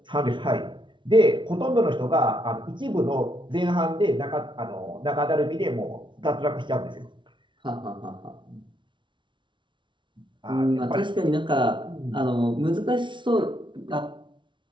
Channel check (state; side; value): late; left; 0.24 ms